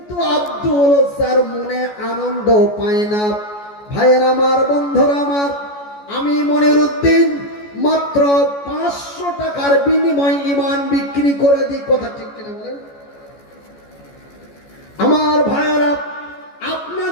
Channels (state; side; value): late; right; 14 ms